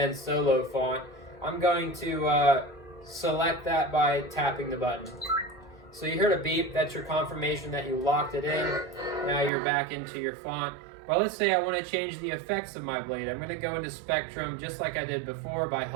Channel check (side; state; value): left; drops out; at 9.5 s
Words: Solo font. I'm going to select that by tapping the button. So you heard a beep, that's your confirmation that you locked it in. Now you're back into your font. But let's say I want to change the effects of my blade. I'm going to go into spectrum just like I did before by